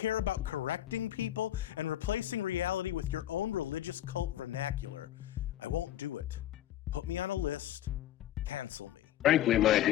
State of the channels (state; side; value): quieter; right; 12.8 dB